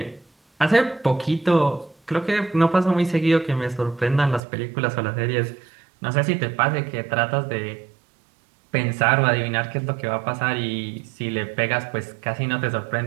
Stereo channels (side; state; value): left; drops out; at 4.4 s